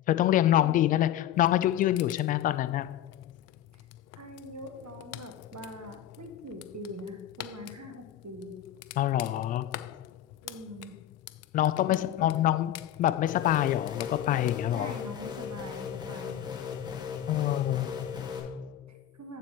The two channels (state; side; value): quieter; right; 11.6 dB